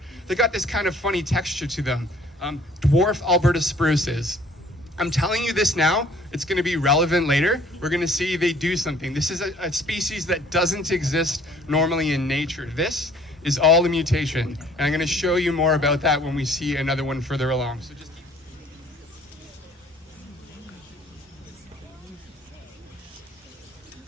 They got this kind of funny texture to them. Dwarf Alberta spruces. I'm telling you this now, it's going to be relevant later. We're going to see they do something. This is a species that doesn't exist normally in nature. This is all a mutation. And I'm going to show you more about that when we see another one further along. So just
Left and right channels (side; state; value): both; normal; correlation 0.56